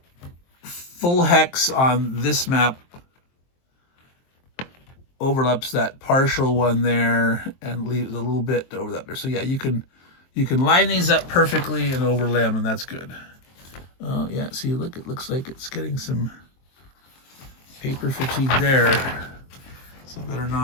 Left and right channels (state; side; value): late; right; 23 ms